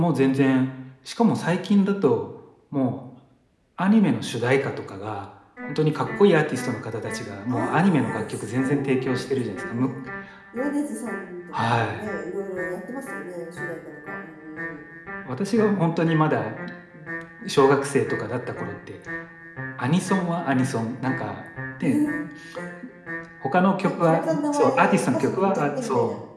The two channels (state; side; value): identical; both; correlation 1.00